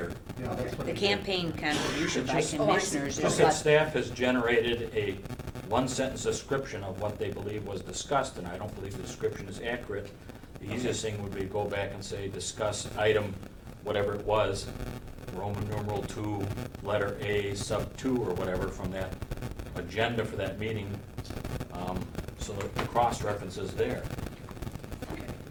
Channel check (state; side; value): identical; both; correlation 1.00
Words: Yeah, that's what The it is. campaign contribution by Just- Oh, I see. commissioners Just is that what, staff has generated a one-sentence description of what they believe was discussed, and I don't believe the description is accurate. The easiest thing would be to go back and say, discuss item, whatever it was, Roman numeral 2, letter A, sub 2, or whatever, from that agenda for that meeting, so that the cross-reference is there. Okay,